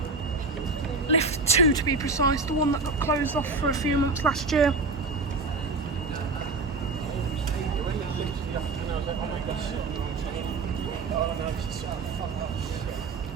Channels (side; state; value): left; quieter; 3.8 dB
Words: Lift 2 to be precise, the one that got closed off for a few months last year.